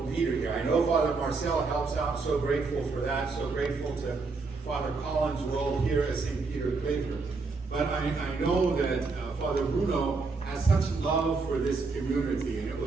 leader here. I know Father Marcel helps out. So grateful for that. So grateful to Father Collins' role here at St. Peter Claver. But I know that Father Bruno has such love for this community, and it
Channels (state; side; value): quieter; left; 4.1 dB